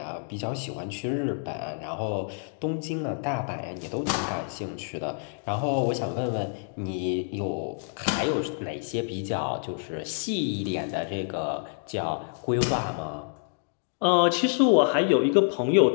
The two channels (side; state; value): right; silent; digital silence